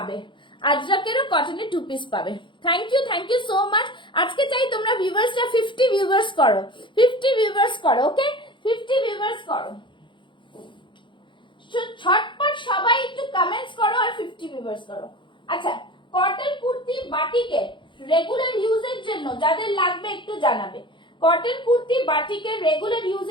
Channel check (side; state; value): right; late; 0.23 ms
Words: আজরাকেরও কটনের 2 পিস পাবে। Thank you so much. আজকে চাই তোমরা ভিউয়ার্সটা 50 ভিউয়ার্স করো, 50 ভিউয়ার্স করো, ওকে? 50 ভিউয়ার্স করো, ছটপট সবাই একটু কমেন্টস করো আর 50 ভিউয়ার্স করো। আচ্ছা, কটন কুর্তি বাটিকের রেগুলার ইউজের জন্য যাদের লাগবে একটু জানাবে, কটন কুর্তি বাটিকের রেগুলার